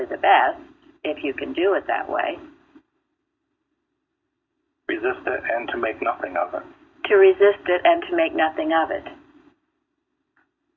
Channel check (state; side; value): identical; both; correlation 1.00